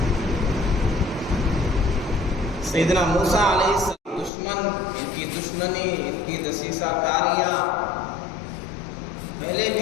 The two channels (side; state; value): right; drops out; at 4.3 s